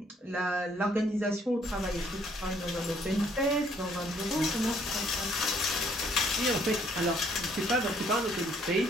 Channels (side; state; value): both; normal; correlation 0.64